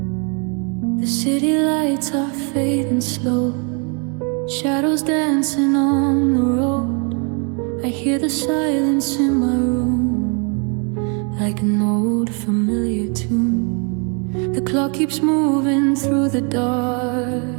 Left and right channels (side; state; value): left; quieter; 36.8 dB